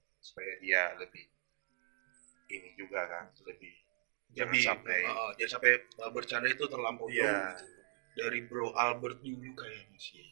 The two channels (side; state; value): left; silent; digital silence